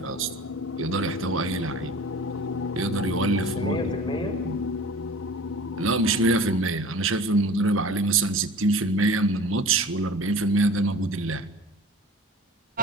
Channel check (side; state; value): both; normal; correlation 0.41